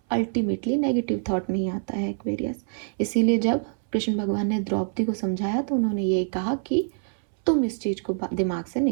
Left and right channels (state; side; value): silent; left; 61 dB below the other